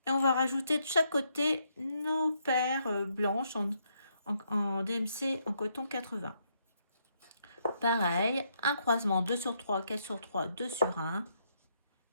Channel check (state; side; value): inverted; both; correlation -0.75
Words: Et on va rajouter de chaque côté nos paires blanches en DMC en coton 80. Pareil, un croisement 2 sur 3, 4 sur 3, 2 sur 1.